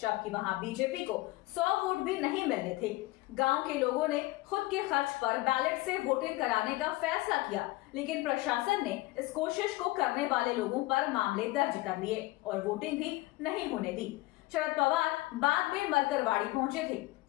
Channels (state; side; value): quieter; right; 19.8 dB